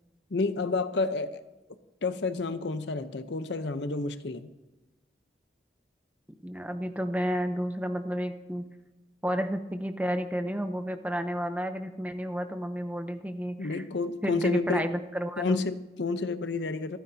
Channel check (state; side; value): normal; both; correlation 0.62